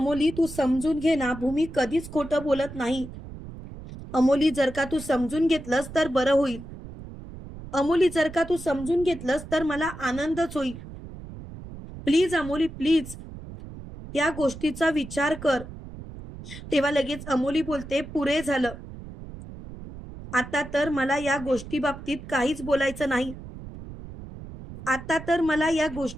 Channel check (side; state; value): right; noise; rumble, 13 dB below the sound